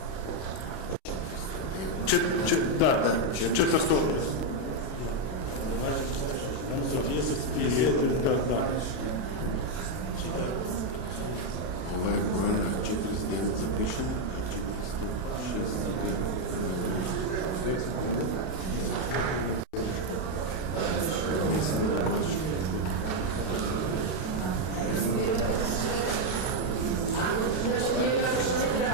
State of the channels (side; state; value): right; late; 32 ms